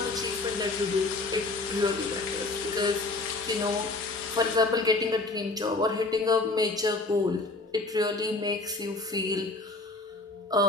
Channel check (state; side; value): quieter; right; 3.2 dB